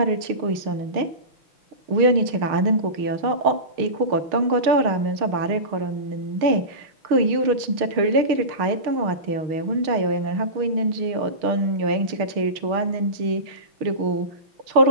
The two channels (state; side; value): late; left; 6.5 ms